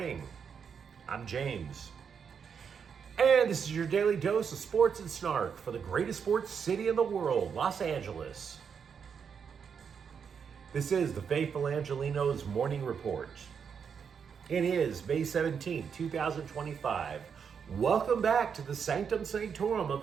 I'm James. And this is your daily dose of sports and snark for the greatest sports city in the world, Los Angeles. This is the faithful Angelenos Morning Report. It is May 17, 2025. Welcome back to the Sanctum Sanctorum of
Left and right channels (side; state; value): left; quieter; 6.8 dB